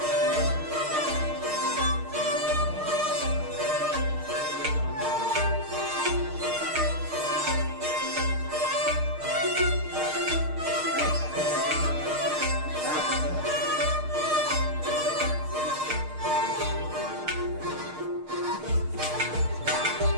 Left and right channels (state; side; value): late; left; 6.5 ms